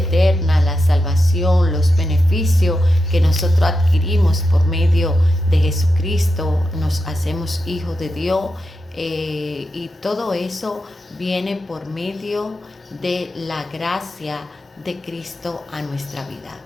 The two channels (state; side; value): normal; both; correlation 0.88